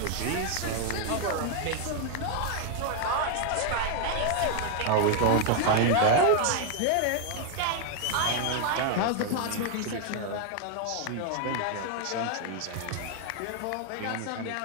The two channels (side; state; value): both; different; correlation 0.00